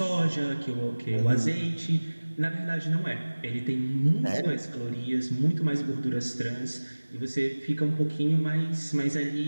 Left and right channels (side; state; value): both; inverted; correlation -1.00